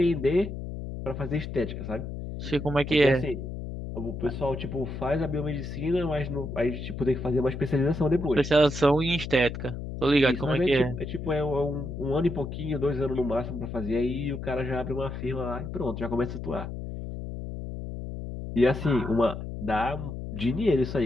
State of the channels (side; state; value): left; noise; hum, 7 dB below the sound